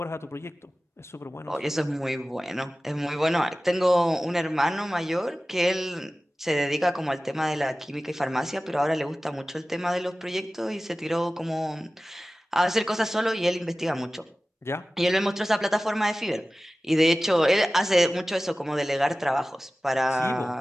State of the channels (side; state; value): both; normal; correlation 0.96